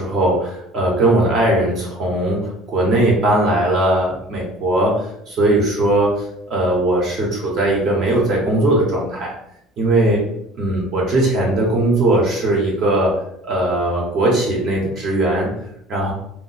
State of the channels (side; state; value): both; normal; correlation 0.46